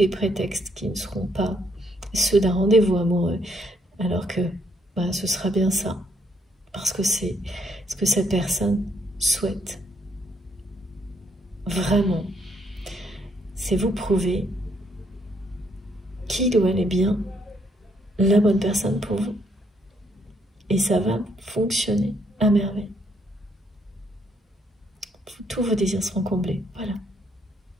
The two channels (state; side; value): normal; both; correlation 0.71